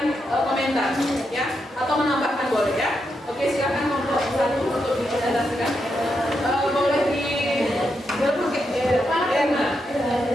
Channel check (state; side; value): normal; both; correlation 0.83